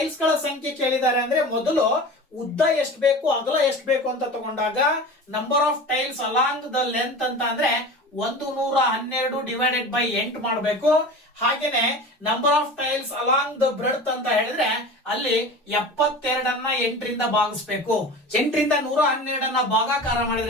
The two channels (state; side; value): normal; both; correlation 0.34